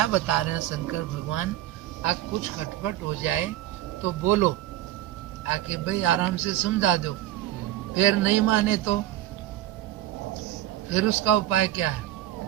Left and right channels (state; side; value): quieter; left; 13.8 dB